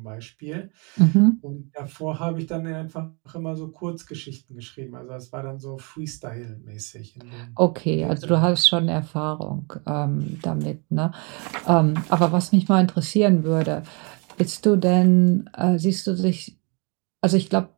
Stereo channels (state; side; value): quieter; left; 32.6 dB